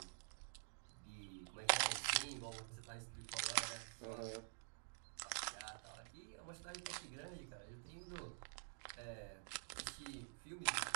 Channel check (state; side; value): silent; left; digital silence